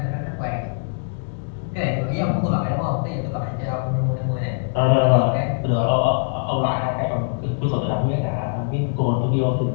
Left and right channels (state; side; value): silent; right; digital silence